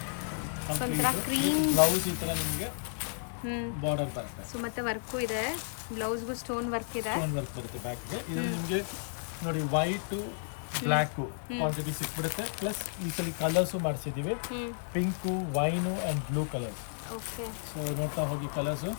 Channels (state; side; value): silent; right; digital silence